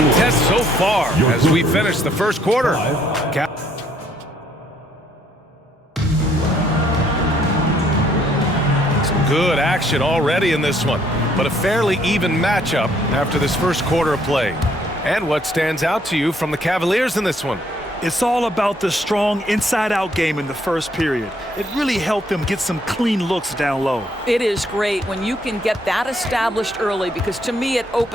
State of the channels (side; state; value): both; normal; correlation 0.67